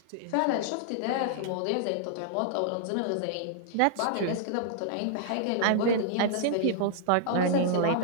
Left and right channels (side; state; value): both; different; correlation -0.01